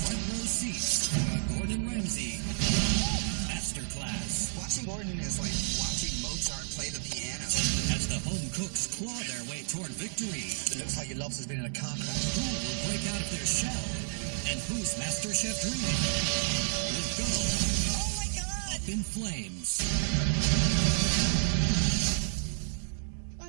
Front row seats for a Gordon Ramsay masterclass. Watching Gordon is like watching Mozart play the piano. As the home cooks claw their way toward victory. It looks like your lobster's been in a car crash. Who will break out of their shell? And whose MasterChef dream will go up in flames?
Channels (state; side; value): silent; left; 57 dB below the other